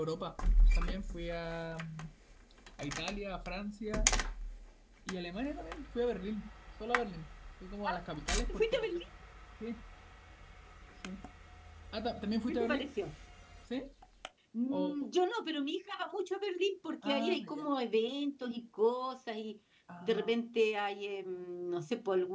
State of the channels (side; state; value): both; identical; correlation 1.00